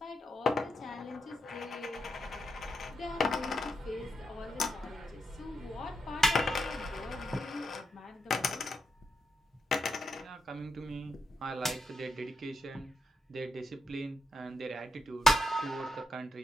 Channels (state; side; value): normal; both; correlation 0.83